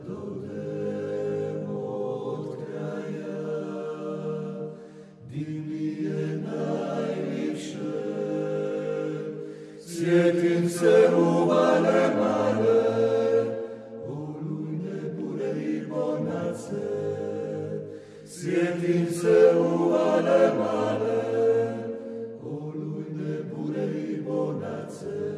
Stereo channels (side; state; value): both; identical; correlation 1.00